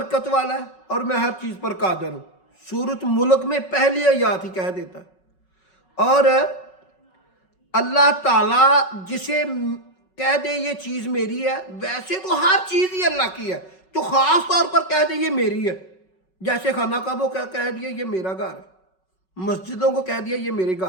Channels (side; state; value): right; late; 5.4 ms